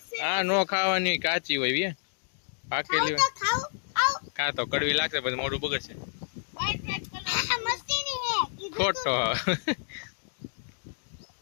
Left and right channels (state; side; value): silent; right; digital silence